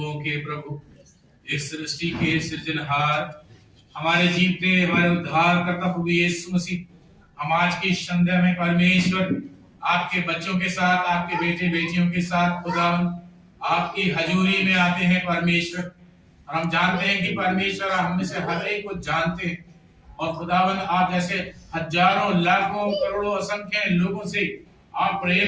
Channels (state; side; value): identical; both; correlation 1.00